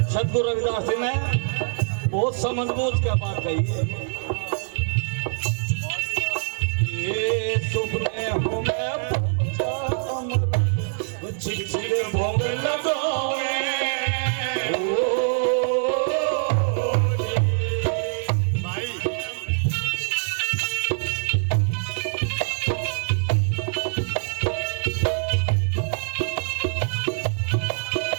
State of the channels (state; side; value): silent; left; digital silence